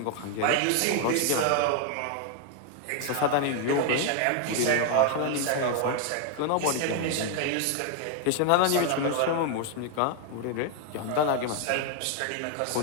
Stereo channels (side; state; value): both; different; correlation 0.01